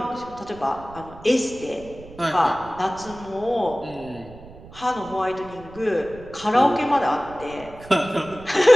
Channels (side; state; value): right; noise; rumble, 19 dB below the sound